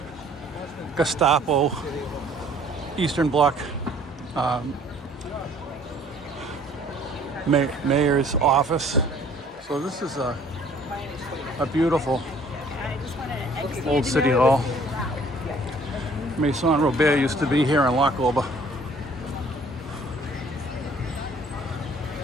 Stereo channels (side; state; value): both; normal; correlation 0.56